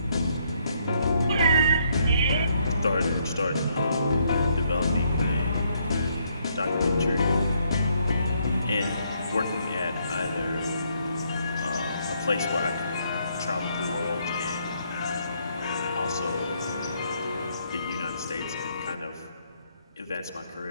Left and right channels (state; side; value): inverted; both; correlation -0.72